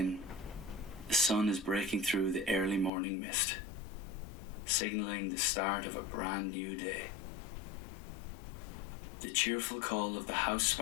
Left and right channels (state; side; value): drops out; right; at 2.9 s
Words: the sun is breaking through the early morning mist, signalling the start of a brand new day. The cheerful call of the house